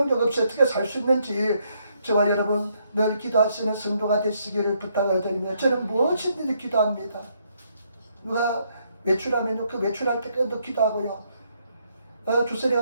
없이 어떻게 살 수 있는지 저와 여러분 늘 기도하시는 성도가 되시기를 부탁을 드립니다. 저는 무엇이든지 기도합니다. 누가 외출하면요 그 외출할 때까지도 기도하고요.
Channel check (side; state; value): both; inverted; correlation -0.73